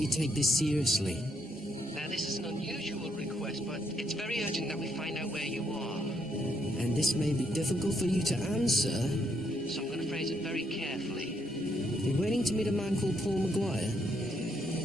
take this seriously. Now, this is an unusual request, but it's very urgent that we find out where you are. And this may be difficult for you to answer, so I'm going to phrase it very carefully. You're waiting to meet a man called Paul Maguire?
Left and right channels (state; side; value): normal; both; correlation 0.74